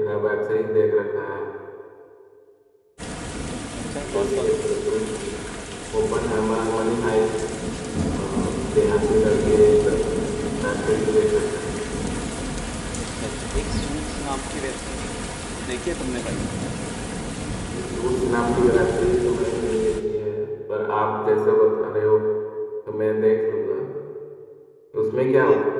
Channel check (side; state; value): both; identical; correlation 1.00